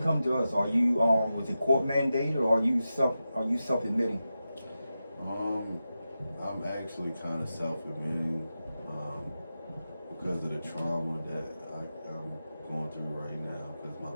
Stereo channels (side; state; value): both; inverted; correlation -0.91